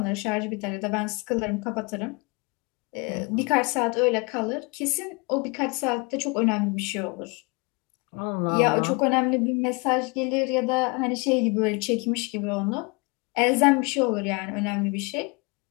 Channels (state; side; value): quieter; right; 29.6 dB